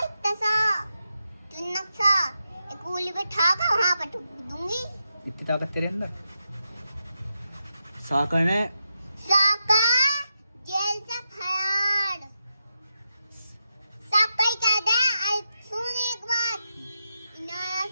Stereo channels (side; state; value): both; inverted; correlation -0.87